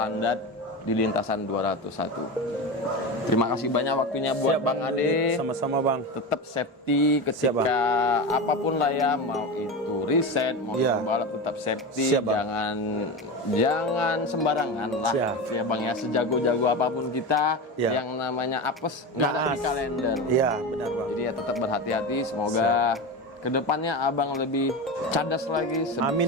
di lintasan 201. Terima kasih banyak waktunya buat Bang Ade. Sama-sama bang. Tetap safety ketika apapun lah ya, mau itu riset, mau balap tetap safety. Siap, bang. Jangan sembarangan lah. Siap. Ya Bang ya, sejago-jago apapun kita yang namanya apes nggak ada di kalender. Iya benar bang. Jadi ya tetap berhati-hati. Semoga kedepannya abang lebih cadas lagi.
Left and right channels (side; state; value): both; normal; correlation 0.22